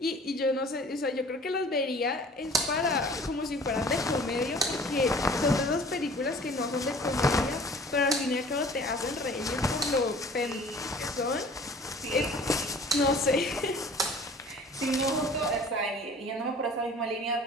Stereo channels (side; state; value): both; normal; correlation 0.47